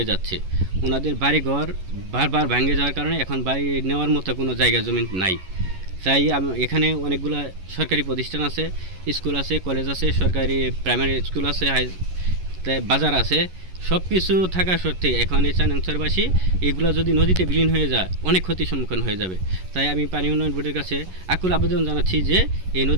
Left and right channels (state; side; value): late; left; 11 ms